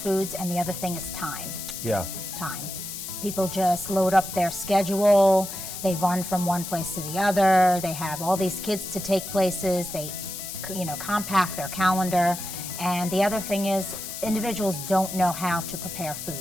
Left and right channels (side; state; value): left; noise; hiss, 8 dB below the sound